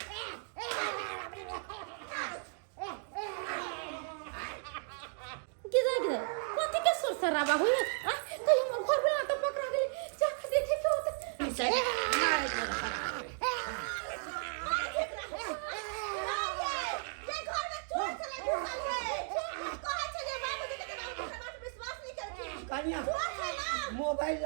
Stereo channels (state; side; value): silent; left; 54 dB below the other